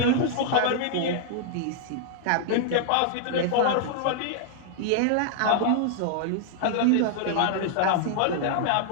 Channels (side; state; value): both; different; correlation -0.01